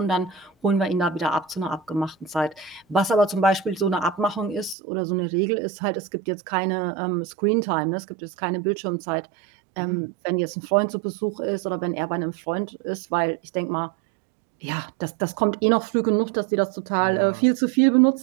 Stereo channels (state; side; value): drops out; left; at 4.8 s